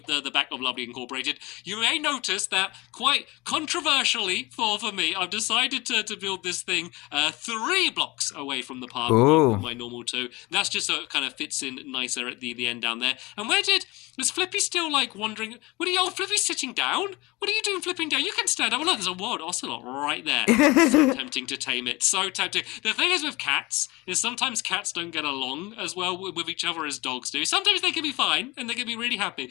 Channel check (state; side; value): quieter; right; 22.5 dB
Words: the back of Lovely Incorporated. You may notice that quite controversially for me, I've decided to build this thing 3 blocks away from the park from my normal 2. That's just so it kind of fits in nicer at the end down there. And is Flippy still like wandering? Flippy's sitting down? What are you doing flipping down? You can stand up. Oh, look, there's a wild ocelot right there. So tempting to tame it. So tempting. The thing is with cats, is sometimes cats don't get along as well with each other as dogs do. Sometimes they can be fine, and they can be really